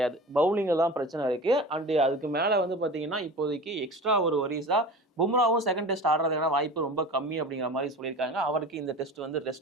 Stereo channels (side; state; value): both; normal; correlation 0.35